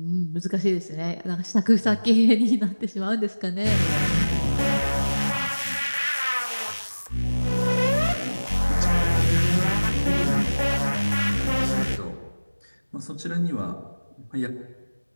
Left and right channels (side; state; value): both; inverted; correlation -1.00